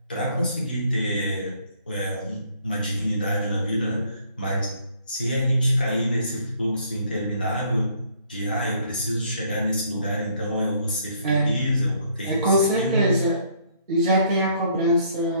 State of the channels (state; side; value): inverted; both; correlation -0.64